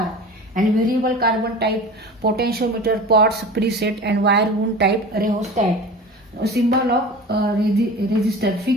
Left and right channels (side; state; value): both; normal; correlation 0.35